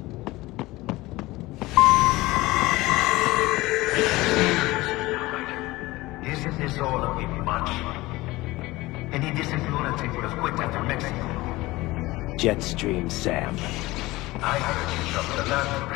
Isn't this all a bit much? Any decent lunatic would have quit after Mexico. Jetstream Sam. I heard you chopped the land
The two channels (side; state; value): right; quieter; 19.7 dB